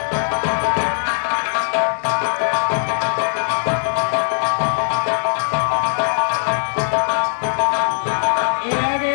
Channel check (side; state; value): right; silent; 66 dB below the other